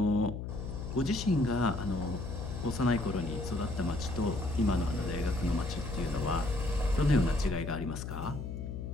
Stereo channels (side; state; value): left; noise; hum, 6 dB below the sound